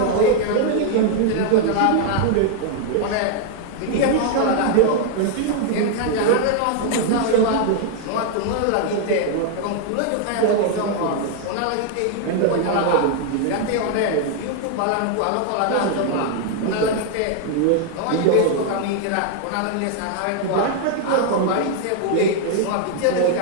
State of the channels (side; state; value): both; different; correlation 0.00